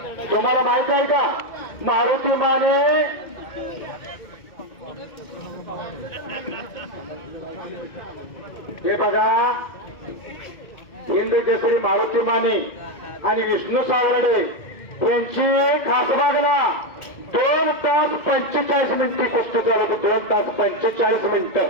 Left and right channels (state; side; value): late; right; 2.2 ms